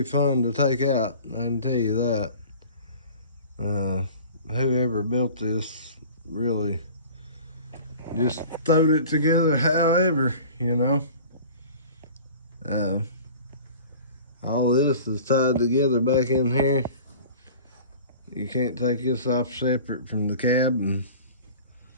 fun to take out. I can tell you that. Whoever built this really just throwed it together. However, you know, all this is tied together back in here. You can't take this off separate from the cab, and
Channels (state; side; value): inverted; both; correlation -0.42